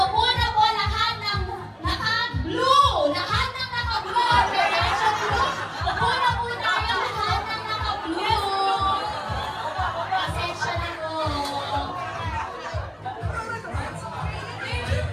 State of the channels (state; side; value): identical; both; correlation 1.00